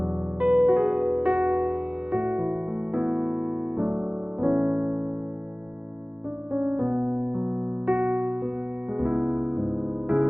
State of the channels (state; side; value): late; left; 0.058 ms